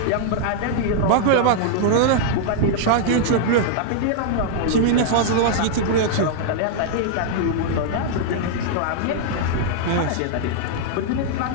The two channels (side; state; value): both; different; correlation -0.01